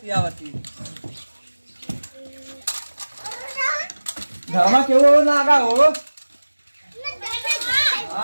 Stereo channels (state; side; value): inverted; both; correlation -1.00